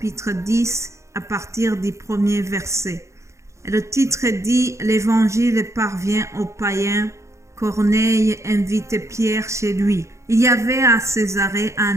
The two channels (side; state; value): left; late; 0.14 ms